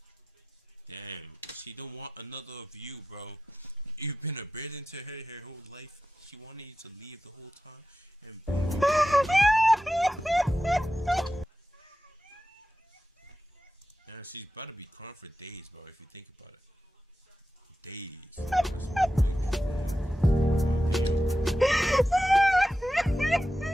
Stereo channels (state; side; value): normal; both; correlation 0.91